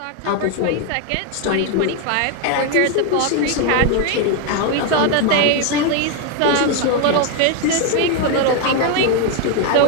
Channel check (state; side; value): different; both; correlation 0.01